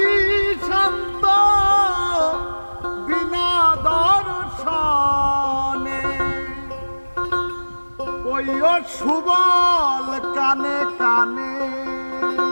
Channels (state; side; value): inverted; both; correlation -1.00